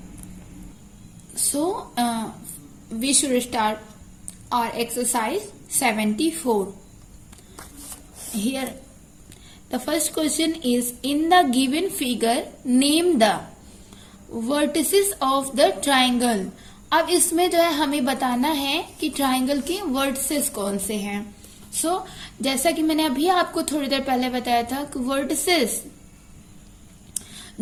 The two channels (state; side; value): identical; both; correlation 1.00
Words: we should start our exercise 74. Here the first question is, in the given figure name the vertices of the triangle. अब इसमें जो है हमें बताना है कि ट्राइंगल के वर्टिसेस कौन से हैं। सो जैसा कि मैंने अभी आपको थोड़ी देर पहले बताया था कि वर्टिसेस